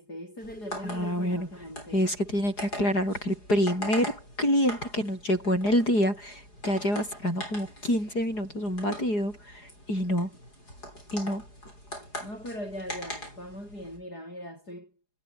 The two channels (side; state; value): right; late; 4.8 ms